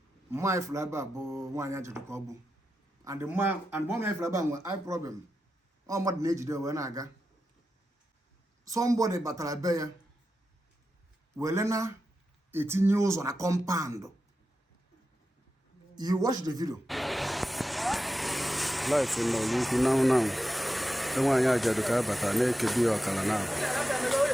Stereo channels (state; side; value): normal; both; correlation 0.90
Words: Mma ifuru ebe a bụ nwaanyị ajadu ka ọ bụ. And mma ifuru ebe a nwe eye problem. Ọ mmadụ na-ejide wee na-aga. Somebody batara be ya wele na etinye ụzọ na compound. You watch the video. Life in Ọlụukwu now. Nwaanyị ajadu ka bata na-ekebi ọkala na